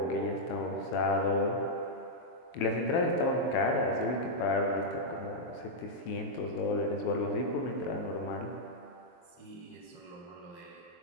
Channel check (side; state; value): right; late; 23 ms